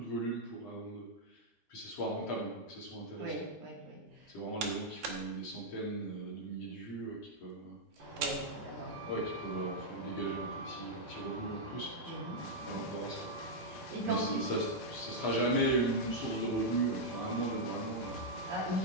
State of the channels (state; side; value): normal; both; correlation -0.04